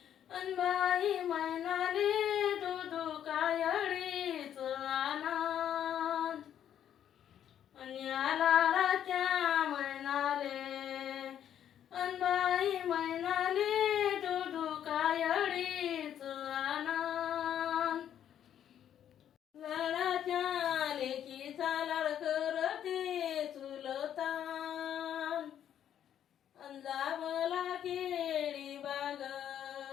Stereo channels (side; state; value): right; quieter; 10.0 dB